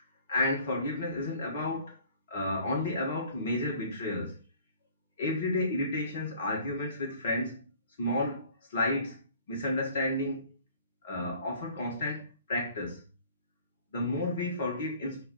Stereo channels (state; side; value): inverted; both; correlation -0.52